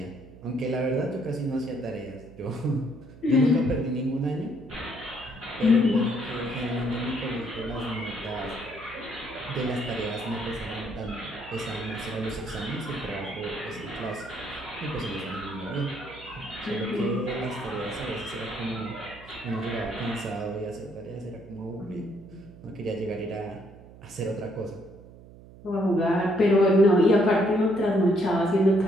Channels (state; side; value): noise; right; hum, 19 dB below the sound